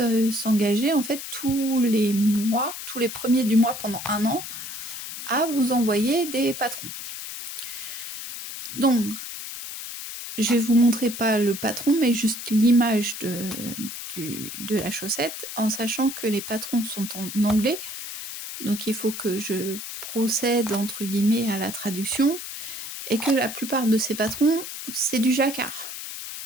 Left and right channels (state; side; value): noise; left; hiss, 8 dB below the sound